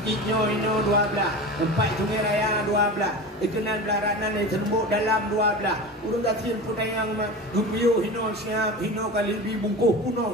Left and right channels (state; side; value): normal; both; correlation 0.30